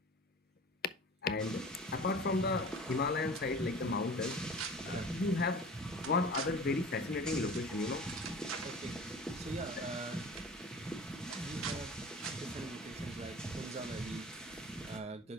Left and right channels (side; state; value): both; normal; correlation 0.40